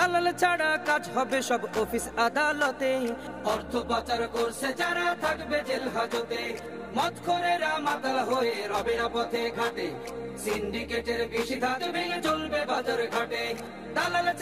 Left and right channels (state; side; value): identical; both; correlation 1.00